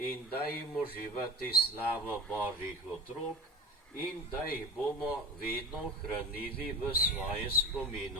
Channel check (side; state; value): both; normal; correlation 0.34